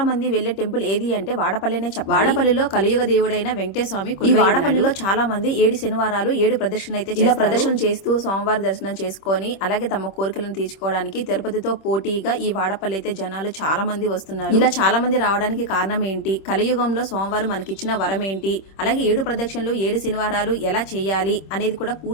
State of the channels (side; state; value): right; late; 26 ms